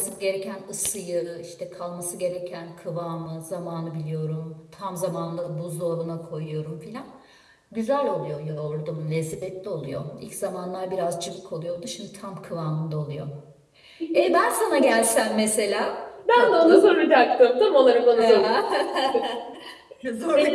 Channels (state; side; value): identical; both; correlation 1.00